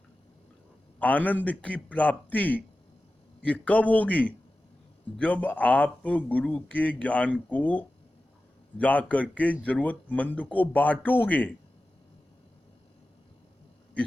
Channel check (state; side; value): normal; both; correlation 0.94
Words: आनंद की प्राप्ति ये कब होगी? जब आप गुरु के ज्ञान को जा करके जरूरतमंद को बांटोगे।